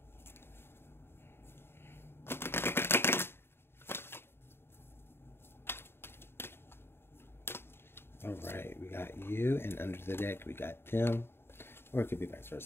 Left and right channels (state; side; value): late; right; 0.11 ms